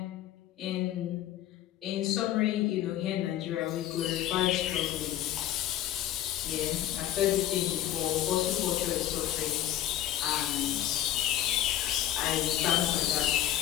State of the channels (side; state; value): right; quieter; 12.6 dB